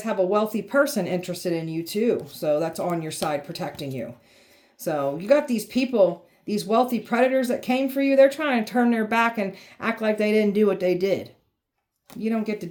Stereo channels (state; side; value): identical; both; correlation 1.00